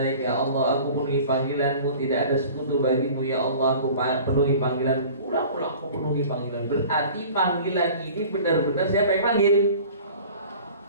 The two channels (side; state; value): both; inverted; correlation -0.44